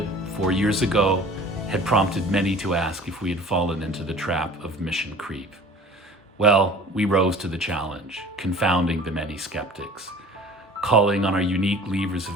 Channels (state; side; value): normal; both; correlation 0.45